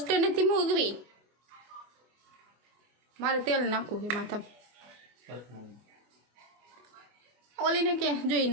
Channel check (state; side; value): late; left; 24 ms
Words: નથી મૂકવી. મારે તેલ નાખવું છે માથા. ઓલીને કે જોઈ